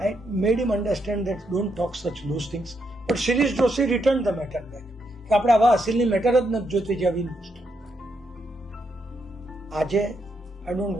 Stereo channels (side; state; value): both; normal; correlation 0.79